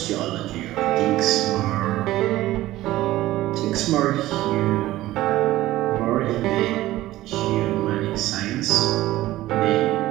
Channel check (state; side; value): quieter; left; 16.0 dB